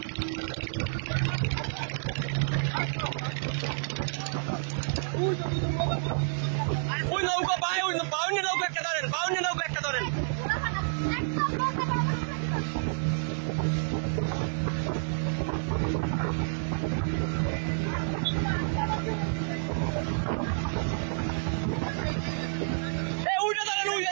ওই নৌকা পায় ওই বাউন্ডি নৌকা একটা ধরেন বাউন্ডি নৌকা একটা ধরেন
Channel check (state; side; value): silent; left; 58 dB below the other